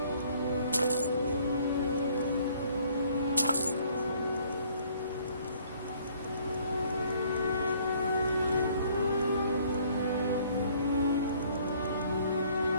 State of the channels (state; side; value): inverted; both; correlation -0.61